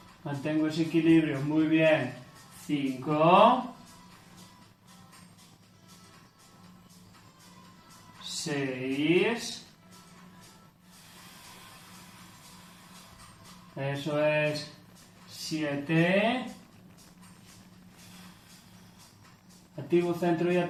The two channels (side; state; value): both; identical; correlation 1.00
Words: mantengo ese equilibrio, muy bien, 5, 6, eso es, 7, activo centro y